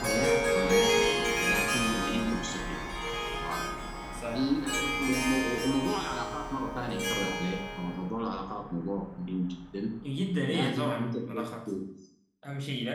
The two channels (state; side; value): identical; both; correlation 1.00